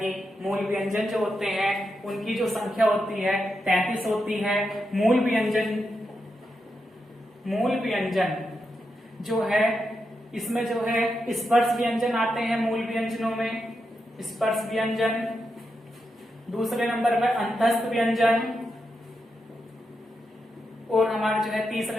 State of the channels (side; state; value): both; normal; correlation 0.86